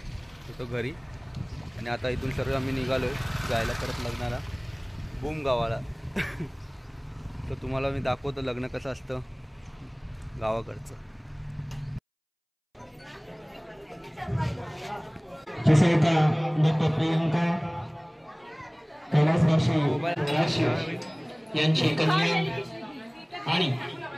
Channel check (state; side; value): identical; both; correlation 1.00